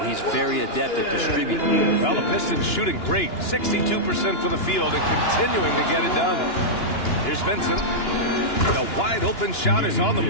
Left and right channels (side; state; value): right; late; 2.9 ms